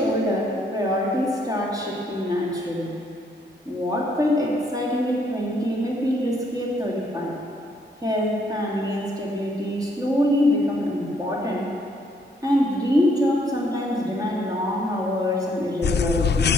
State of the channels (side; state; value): both; normal; correlation 0.69